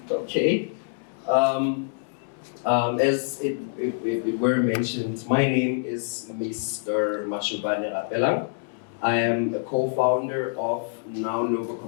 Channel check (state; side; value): silent; right; 61 dB below the other